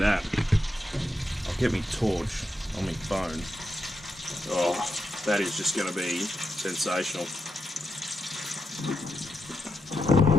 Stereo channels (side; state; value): both; normal; correlation 0.86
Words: I'll get me torch on my phone. Oh, that is just going to be sensational.